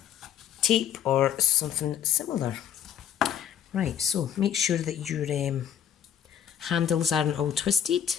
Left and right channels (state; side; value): quieter; right; 9.5 dB